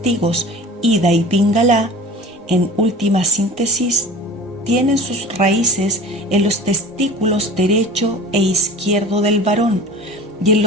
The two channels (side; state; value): both; normal; correlation 0.39